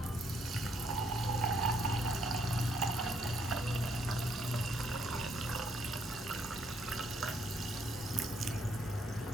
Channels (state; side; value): normal; both; correlation 0.71